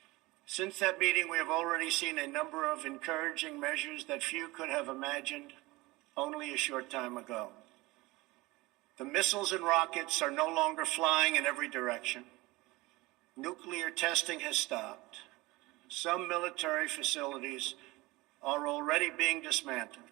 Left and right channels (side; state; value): left; quieter; 21.4 dB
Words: Since that meeting, we have already seen a number of encouraging measures that few could have imagined only a short time ago. The missiles and rockets are no longer flying in every direction. Nuclear testing has stopped. Some military facilities are already being dismantled.